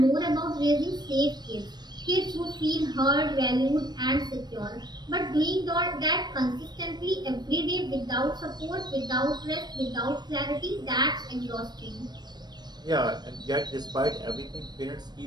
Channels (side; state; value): left; late; 0.20 ms